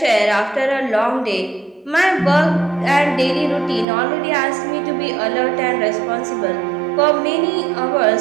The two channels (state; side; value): drops out; left; at 3.9 s